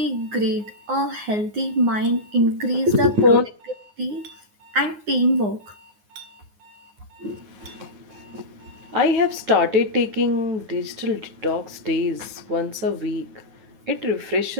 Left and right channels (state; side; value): late; left; 9.6 ms